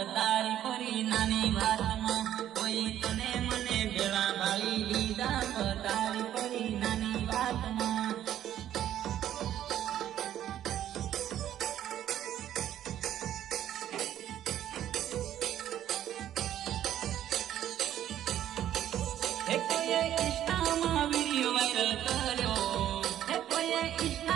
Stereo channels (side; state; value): left; quieter; 11.5 dB